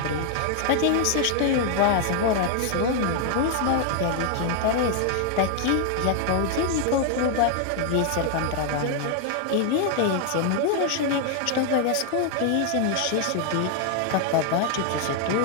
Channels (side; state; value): both; different; correlation 0.00